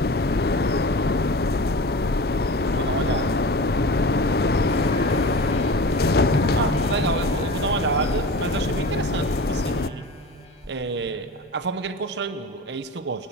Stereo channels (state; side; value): normal; both; correlation 0.34